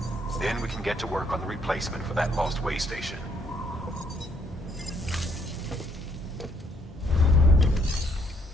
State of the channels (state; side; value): normal; both; correlation 0.69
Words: Then we can get to work on the replacement for that lost Waystation.